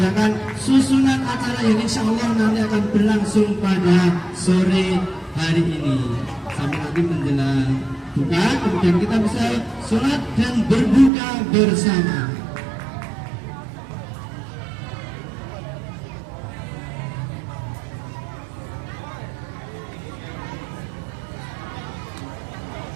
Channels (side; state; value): left; drops out; at 11.1 s